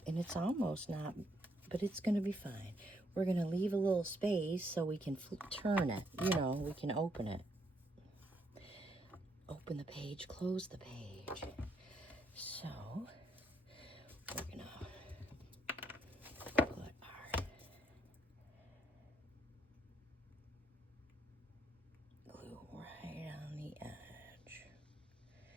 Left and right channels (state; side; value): normal; both; correlation 0.74